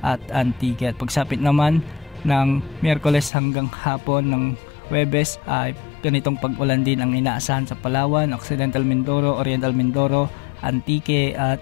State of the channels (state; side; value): drops out; right; at 3.3 s